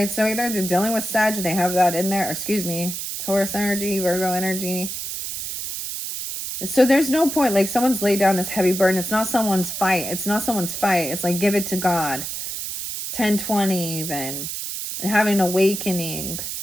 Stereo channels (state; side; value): noise; right; hiss, 5 dB below the sound